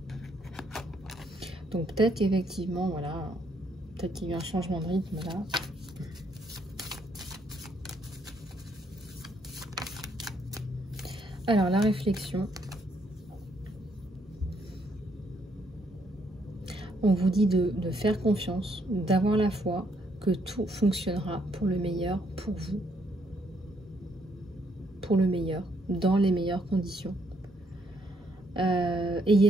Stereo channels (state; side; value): normal; both; correlation 0.72